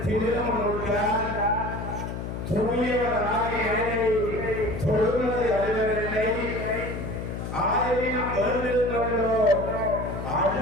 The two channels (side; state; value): left; noise; hum, 6 dB below the sound